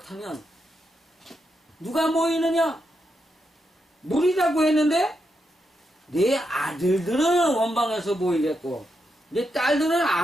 누가 모이느냐? 무리라고 했는데 내 아들들은 원방에서 모이겠고 내 딸들은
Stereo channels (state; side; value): normal; both; correlation 0.83